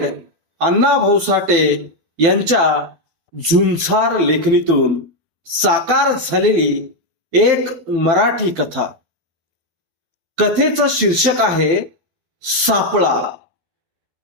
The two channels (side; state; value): left; late; 12 ms